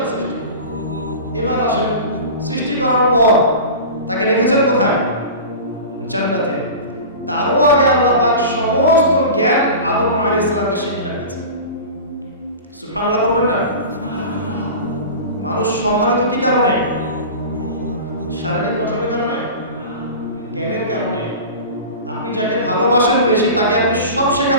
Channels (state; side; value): inverted; both; correlation -0.33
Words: সৃষ্টি। এবার আসেন, সৃষ্টি করার পর তাকে রেখেছেন কোথায়? জান্নাতে। তারও আগে আল্লাহ পাক সমস্ত জ্ঞান আদম আলাইহিস সালামকে শিক্ষা দিয়েছেন। সুবহানাল্লাহ বলবেন না? মানুষ সম্মানিত কি কারণে? শারীরিক গঠনের কারণে, জ্ঞানের কারণে। আপনি যাকে ভালোবাসেন বেশি তাকে আপনি সব